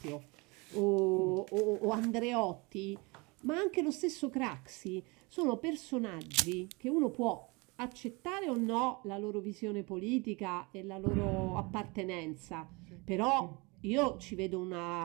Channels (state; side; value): quieter; left; 27.1 dB